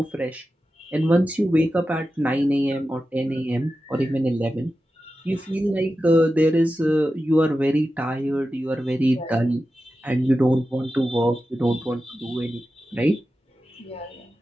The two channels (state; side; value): normal; both; correlation 0.92